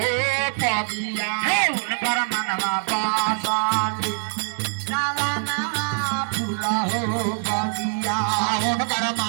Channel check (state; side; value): silent; left; 61 dB below the other